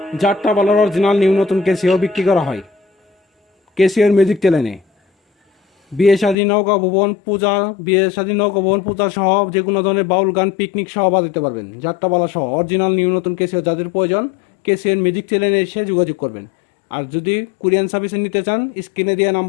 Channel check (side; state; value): right; drops out; at 6.4 s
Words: যাত্রাপালার original new নতুন Casio বিক্রি করা হয় কেসিওর মিউজিক চ্যানেলে। বিয়ে শাদী নৌকা ভবন পূজা সহ যে কোনো ধরনের বাউল গান পিকনিক সহ বাজাতে পারবেন। যাত্রাপালা সহ অরিজিনাল নিউ নতুন কেসিও যাদের প্রয়োজন কেসিওর মিউজিক চ্যানেলে এসে যোগাযোগ করবেন। আর যদি কুরিয়ান সার্ভিসে নিতে চান স্ক্রিনে দেওয়া